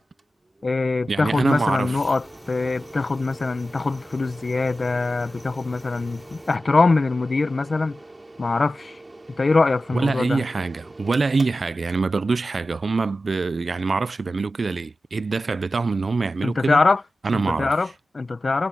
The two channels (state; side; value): normal; both; correlation 0.93